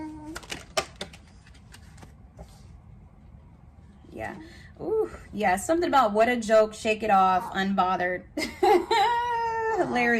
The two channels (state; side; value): identical; both; correlation 1.00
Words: Yeah. Ooh, yeah. Something about what a joke, shake it off, unbothered.